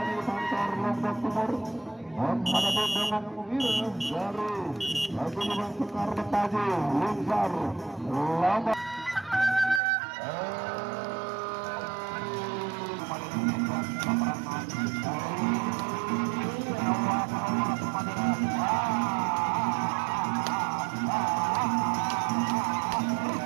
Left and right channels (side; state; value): left; drops out; at 9.8 s